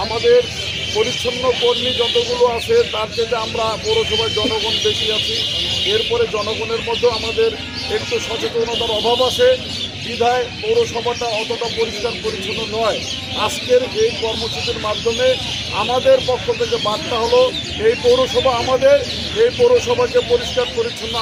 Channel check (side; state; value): both; identical; correlation 1.00